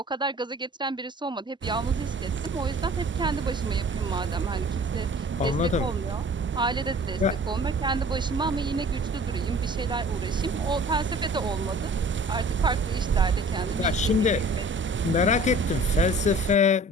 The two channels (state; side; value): normal; both; correlation 0.48